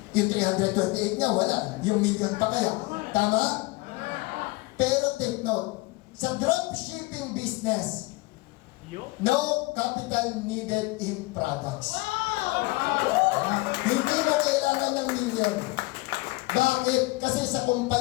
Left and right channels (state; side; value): quieter; right; 22.8 dB